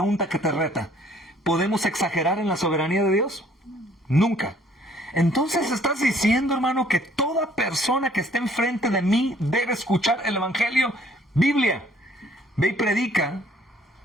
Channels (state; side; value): normal; both; correlation 0.60